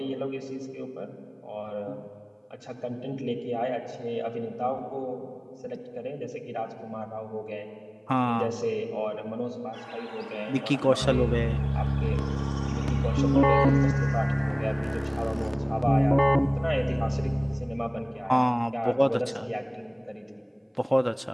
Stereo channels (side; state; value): both; identical; correlation 1.00